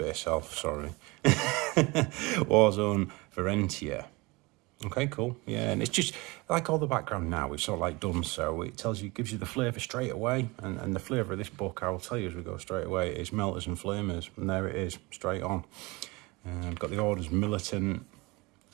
elf, sorry. Warzone Varentia. Okay, cool. Yeah, and it's just, like all the background now, it's sort of like done so. It gives you the flavour straight away. And the flavour of this book, I will tell you as we go straight away, is Melters and Flamers. And there it is, straight on. I've got the Orders Militant,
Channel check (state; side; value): quieter; left; 24.5 dB